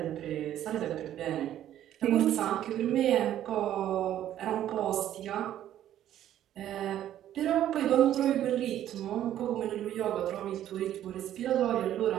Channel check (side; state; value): left; quieter; 11.7 dB